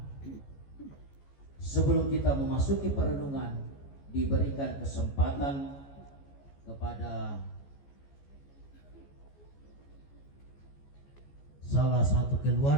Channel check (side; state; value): right; late; 14 ms